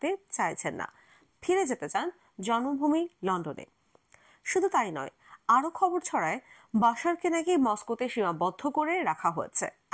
চাইছেন না, ফিরে যেতে চান জন্মভূমি লন্ডনে। শুধু তাই নয়, আরো খবর ছড়ায় বাশারকে নাকি মস্কোতে সীমাবদ্ধ করে রাখা হয়েছে,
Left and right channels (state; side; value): identical; both; correlation 1.00